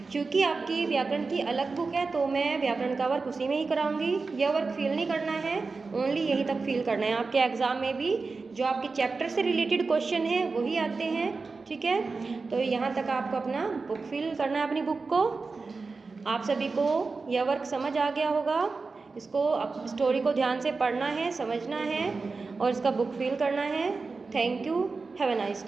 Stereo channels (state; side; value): quieter; left; 4.2 dB